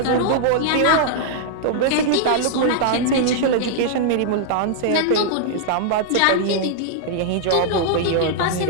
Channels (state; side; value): different; both; correlation -0.01